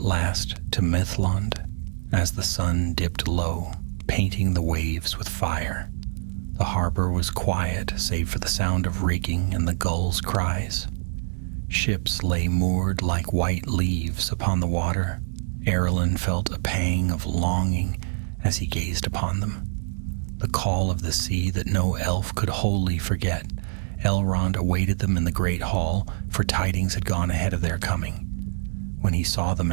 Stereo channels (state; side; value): silent; left; digital silence